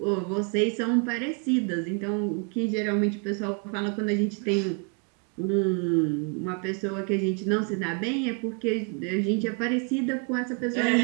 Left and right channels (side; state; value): left; quieter; 38.0 dB